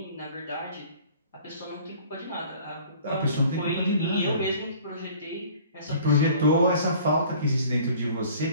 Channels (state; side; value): inverted; both; correlation -0.50